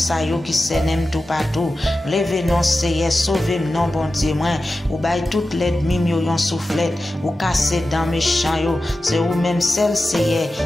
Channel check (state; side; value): normal; both; correlation 0.93